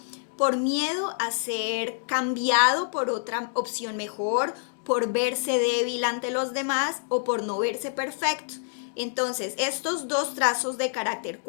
por miedo a ser cambiado por otra opción mejor, por verse débil ante los demás o por no verse perfecto. Entonces, estos dos trazos de carácter,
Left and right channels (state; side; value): silent; right; digital silence